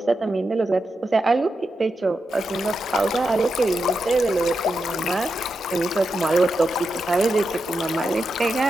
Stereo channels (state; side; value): normal; both; correlation 0.87